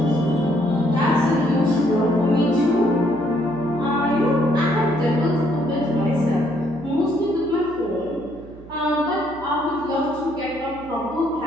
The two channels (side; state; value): right; noise; hum, 19 dB below the sound